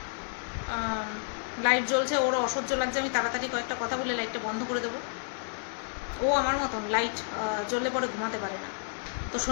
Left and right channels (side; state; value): right; silent; digital silence